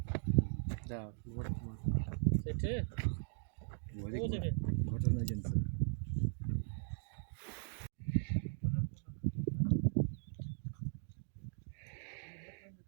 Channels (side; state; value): left; silent; digital silence